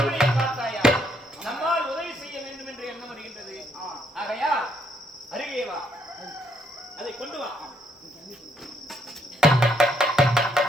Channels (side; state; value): both; normal; correlation 0.71